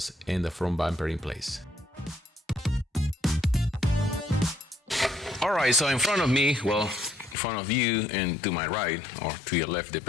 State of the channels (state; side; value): drops out; right; at 7.4 s